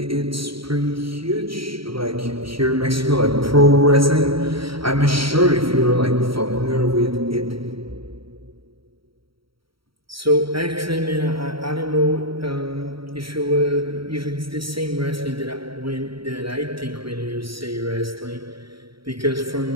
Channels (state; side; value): late; left; 0.75 ms